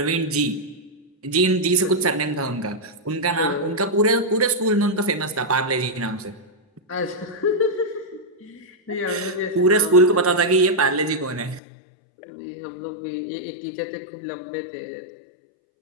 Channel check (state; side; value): drops out; right; at 11.6 s